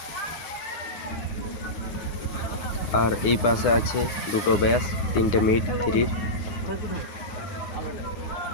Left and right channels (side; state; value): right; late; 9.7 ms